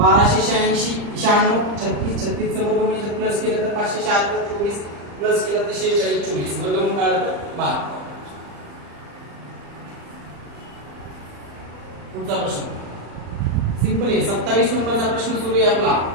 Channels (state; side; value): late; left; 35 ms